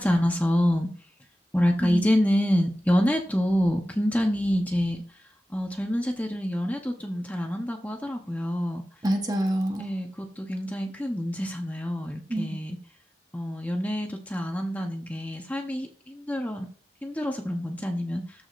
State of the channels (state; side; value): normal; both; correlation 0.95